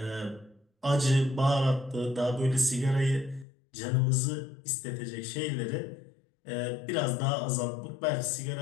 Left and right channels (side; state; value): right; drops out; at 3.5 s